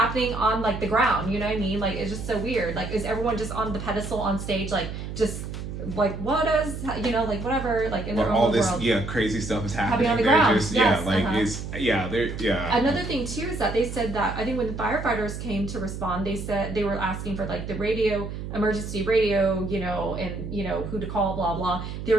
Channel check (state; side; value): noise; right; hum, 7 dB below the sound